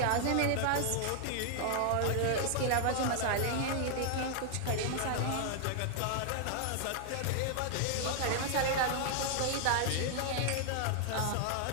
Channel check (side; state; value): both; different; correlation 0.00